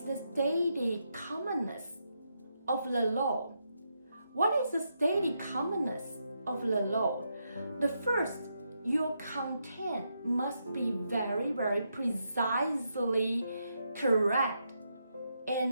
commonness of the law. What is the steady commonness of the law? The first, your content must be very precisely correct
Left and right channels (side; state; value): both; inverted; correlation -0.82